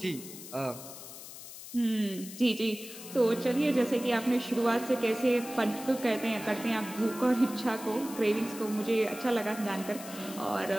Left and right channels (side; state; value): left; noise; hiss, 13 dB below the sound